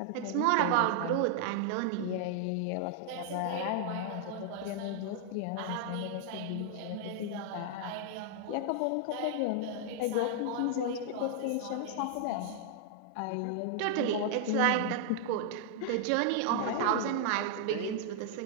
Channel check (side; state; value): both; different; correlation -0.01